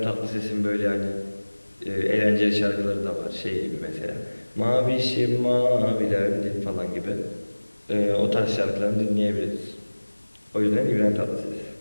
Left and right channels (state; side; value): inverted; both; correlation -1.00